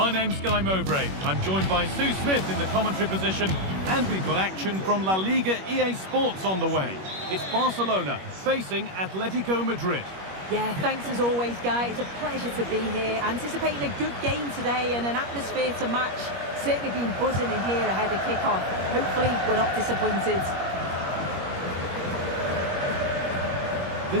name's Guy Mowbray. I'm joined by Sue Smith in the commentary position, and we've got action from La Liga EA Sports on the way. It's Barcelona facing Atletico Madrid. Yeah, thanks as always, Guy. It's a pleasure to be here. Anticipating a good game today and an atmosphere to match. Certainly been buzzing in here ahead of kick-off. Hopefully we're not disappointed.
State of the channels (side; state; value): left; late; 21 ms